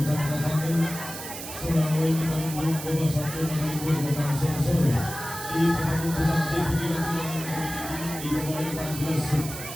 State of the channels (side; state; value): right; noise; hiss, 9 dB below the sound